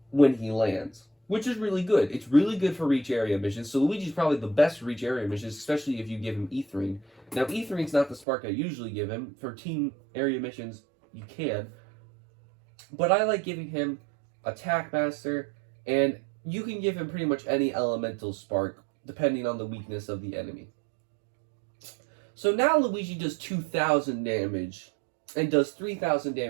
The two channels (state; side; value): drops out; left; at 8.2 s